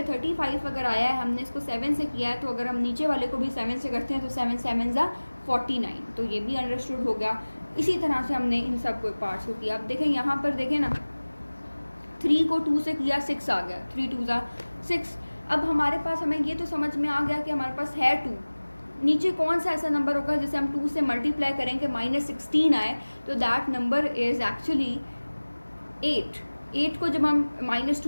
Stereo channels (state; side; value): inverted; both; correlation -1.00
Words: 35 अगर आया है, हमने इसको 7 से किया है, तो अगर हम नीचे वाले को भी 7 से करते हैं तो 7 7 ज़ा 49। तो ये भी अंडरस्टूड हो गया। इसी तरह से हमने इन सब को पार्ट्स को किया। अब देखें यहाँ पर देखें ना, 3 को 2 से किया, 6 आ गया, 3 2 ज़ा 6। अब हमारे पास, हमें ये तो समझ में आ गया कि हमारे पास है 2, नीचे कौन सा ऐसा नंबर होगा जिसे हम 2 से मल्टीप्लाई करेंगे -16 आए, तो दैट नंबर इज़ एक्चुअली 8। 8 को जब हम